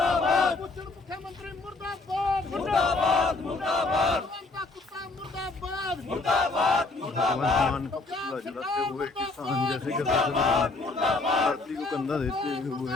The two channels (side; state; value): right; quieter; 3.4 dB